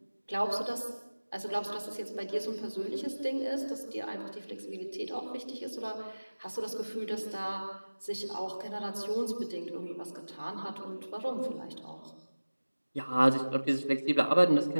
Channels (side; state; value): both; inverted; correlation -1.00